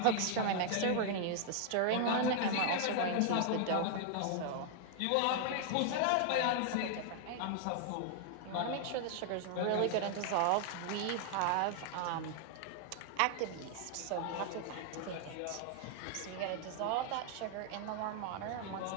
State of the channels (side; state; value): both; different; correlation 0.00